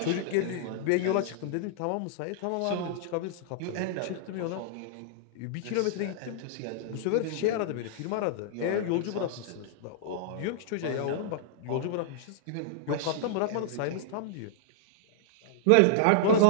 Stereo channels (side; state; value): both; different; correlation -0.01